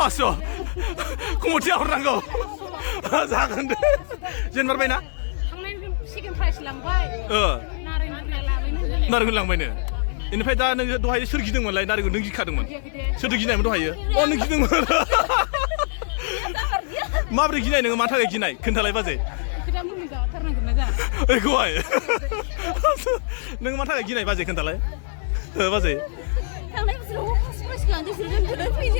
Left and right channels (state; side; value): silent; right; 63 dB below the other